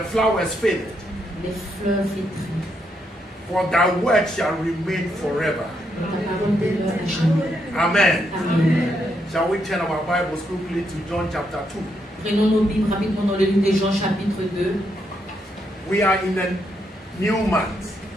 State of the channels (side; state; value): both; normal; correlation 0.78